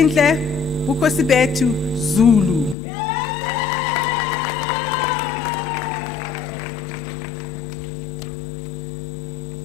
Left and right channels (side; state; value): right; drops out; at 2.8 s